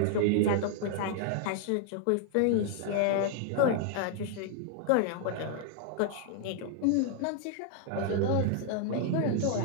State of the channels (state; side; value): different; both; correlation 0.00